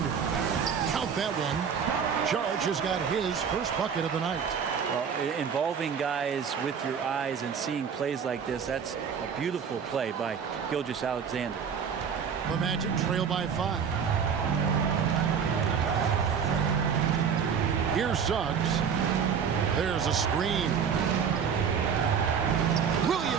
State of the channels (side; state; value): left; quieter; 7.0 dB